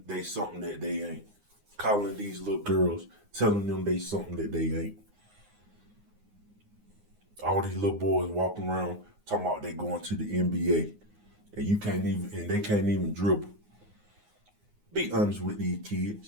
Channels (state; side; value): late; left; 9.6 ms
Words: they something that they ain't. Calling these little girls, telling them they something that they ain't. All these little boys walking around talking about they going to the NBA, and you can't even, and they can't even dribble. Be honest with these